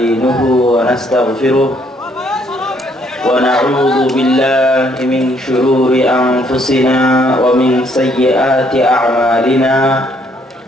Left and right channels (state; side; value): normal; both; correlation 0.68